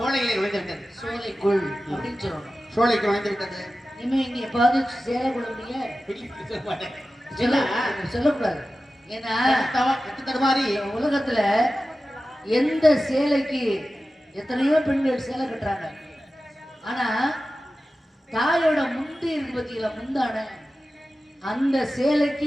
நுழைந்து விட்டது. சோலைக்குள் அப்படின்னு சொல்லணும். சோலைக்கு நுழைந்து விட்டது. இனிமே இங்க எப்பாவது சேலை கொள்ளுங்க சொல்லக்கூடாது. ஏன்னா தடுமாறி உலகத்துல எந்த சேலைக்கு எத்தனையோ பெண்கள் சேலை கட்டுறாங்க, ஆனா தாயோட முந்தி இருக்கு பத்தியில முந்தான அந்த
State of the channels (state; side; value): normal; both; correlation 0.94